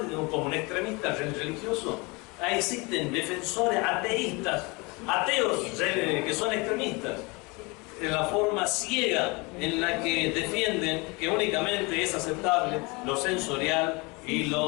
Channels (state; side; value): quieter; right; 27.0 dB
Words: como un extremista religioso, ahí existen defensores ateístas, ateos que son extremistas. En la forma ciega en la que defienden que únicamente es aceptable lo sensorial y